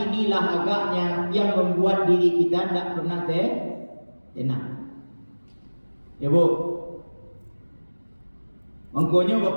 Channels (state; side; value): inverted; both; correlation -1.00